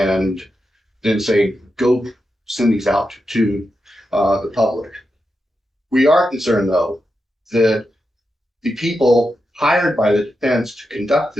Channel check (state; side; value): normal; both; correlation 0.88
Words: then say, go send these out to the public. We are concerned, though, that the people hired by the defense to conduct